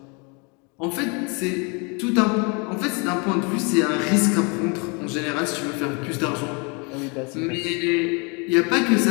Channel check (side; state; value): right; quieter; 32.4 dB